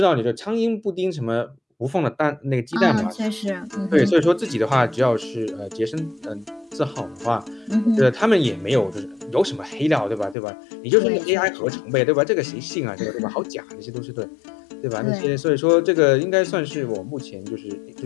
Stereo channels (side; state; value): right; drops out; at 10.4 s